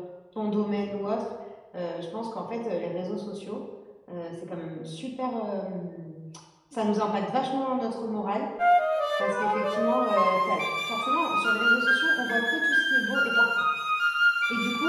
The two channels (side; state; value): both; identical; correlation 1.00